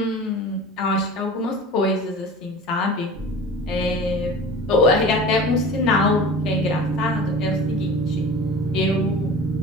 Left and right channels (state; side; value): normal; both; correlation 0.37